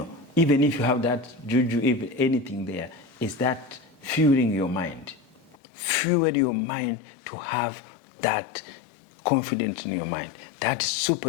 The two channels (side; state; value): right; drops out; at 5.6 s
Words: Even if you have that juju, even anything there, is that fueling your mind. Fuel your mind to have that confidence in your mind. That